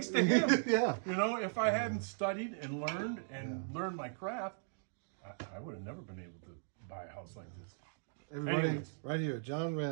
to him. Yeah. You know, if I hadn't studied and learned my craft, I would have never been able to buy a house like this. Everybody, right here, John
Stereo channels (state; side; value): silent; left; digital silence